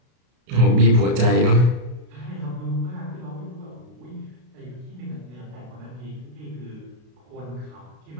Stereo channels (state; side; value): late; left; 33 ms